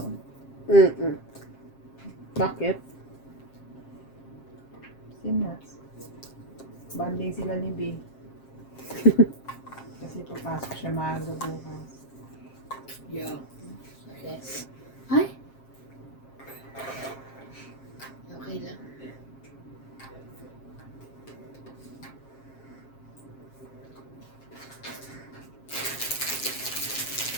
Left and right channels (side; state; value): right; late; 7.5 ms